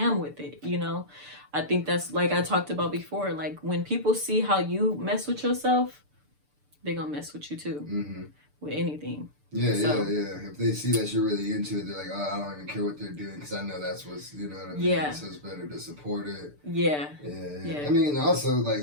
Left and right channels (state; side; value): late; left; 6.8 ms